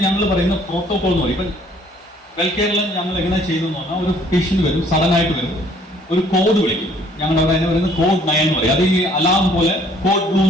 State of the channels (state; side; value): normal; both; correlation 0.59